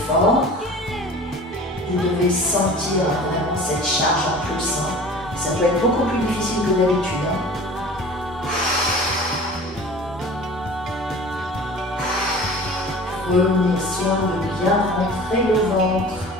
Vous devez sentir vraiment cette charge en plus. Ça peut être beaucoup plus difficile que d'habitude. Prenez soin de bien rentrer le ventre.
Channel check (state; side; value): normal; both; correlation 0.41